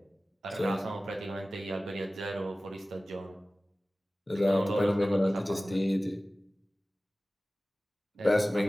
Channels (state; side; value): normal; both; correlation 0.97